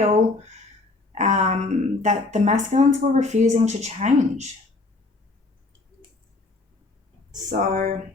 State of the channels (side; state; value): right; quieter; 3.3 dB